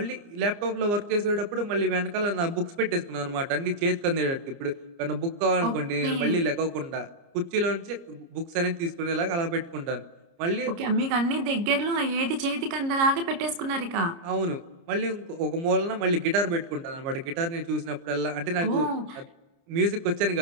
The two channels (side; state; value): left; late; 29 ms